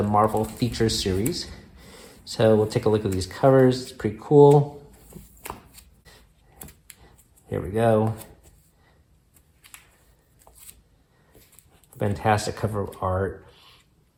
Marvel Feature Series. So we'll take a look at these covers. It's pretty cool. Here we go. Fantastic cover art.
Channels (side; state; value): both; identical; correlation 1.00